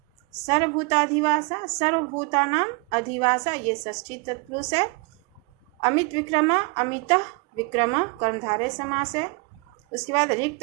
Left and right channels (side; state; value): left; quieter; 31.4 dB